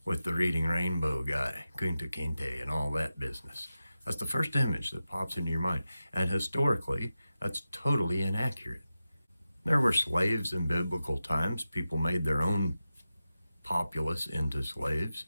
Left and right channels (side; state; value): both; inverted; correlation -0.93